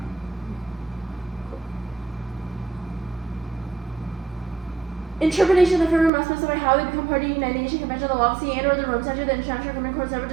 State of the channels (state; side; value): drops out; left; at 6.1 s